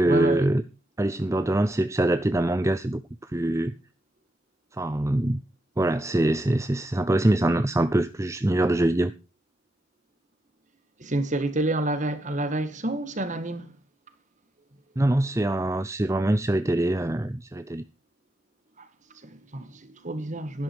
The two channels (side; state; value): both; normal; correlation 0.83